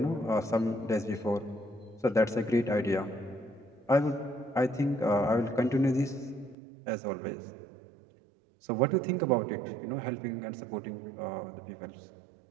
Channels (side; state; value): left; drops out; at 6.6 s